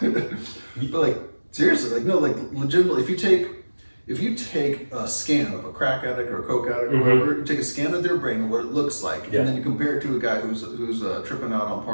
But like seriously, like no, like legitimately, if you take a scan of a crack addict or a coke addict or whatever, you take a scan of their brain and what it looks like, and then you compare it to a guy who's tripping out on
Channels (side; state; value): both; inverted; correlation -1.00